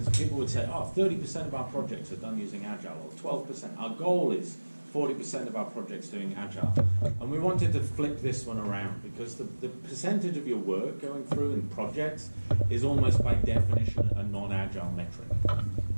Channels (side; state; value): both; inverted; correlation -1.00